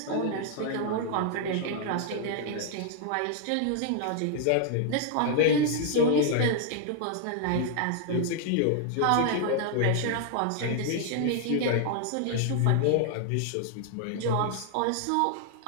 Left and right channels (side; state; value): both; different; correlation 0.00